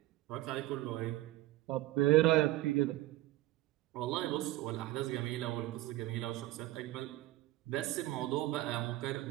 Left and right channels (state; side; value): quieter; left; 16.8 dB